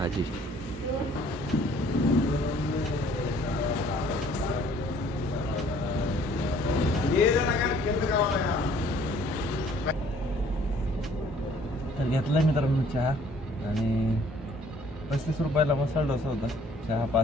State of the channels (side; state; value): both; normal; correlation 0.58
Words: तर घेतलाय मित्रांनो चहा, आणि 35 रुपयाला मसाला डोसा होता. चहा